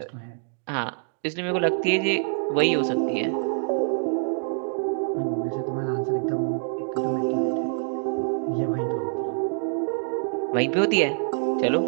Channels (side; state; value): left; silent; 61 dB below the other